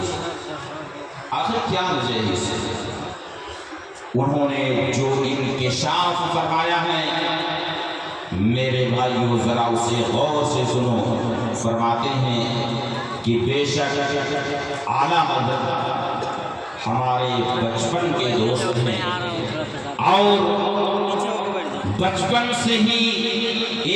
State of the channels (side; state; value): both; identical; correlation 1.00